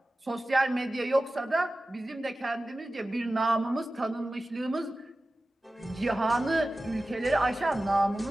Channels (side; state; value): both; normal; correlation 0.96